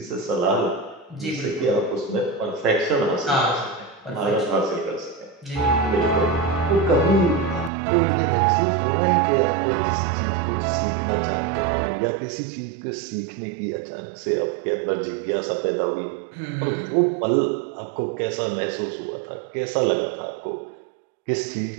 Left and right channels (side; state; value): left; drops out; at 7.7 s